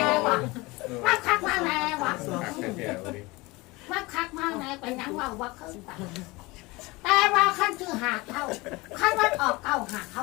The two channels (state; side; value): quieter; right; 23.0 dB